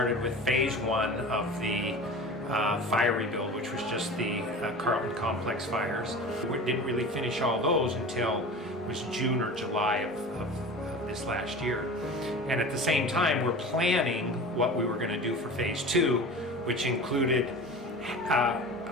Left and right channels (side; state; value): both; normal; correlation 0.35